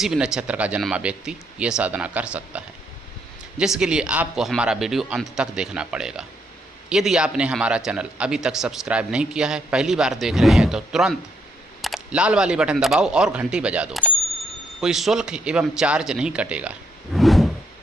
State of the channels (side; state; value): both; normal; correlation 0.74